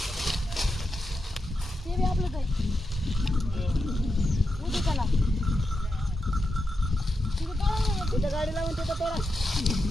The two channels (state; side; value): normal; both; correlation 0.87